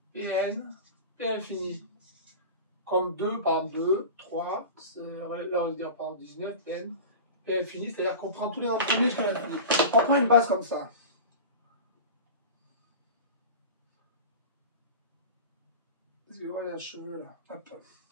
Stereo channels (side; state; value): both; inverted; correlation -0.32